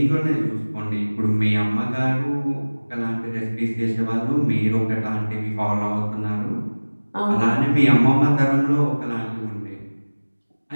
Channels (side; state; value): both; inverted; correlation -1.00